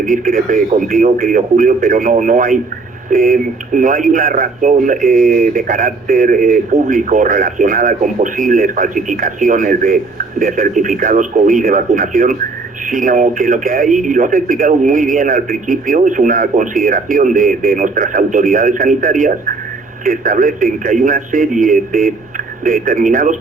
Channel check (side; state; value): left; quieter; 3.9 dB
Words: discrepe contigo, querido Julio, pero no hay una razón de carácter público relacionada con posibles falsificaciones de certificados COVID de vacunación, sino que lo que hay, y lo has explicado muy bien al principio, es una consideración de nuestras autoridades sanitarias que establecen que hay una serie de determinados